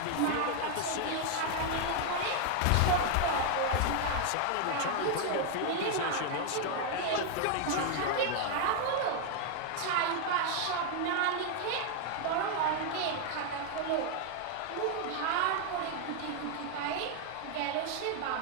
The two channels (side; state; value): both; different; correlation 0.00